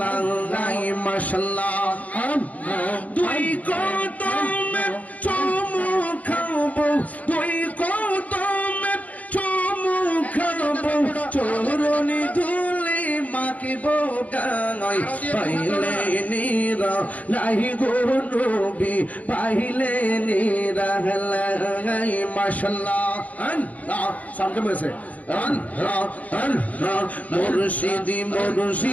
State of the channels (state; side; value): late; right; 0.072 ms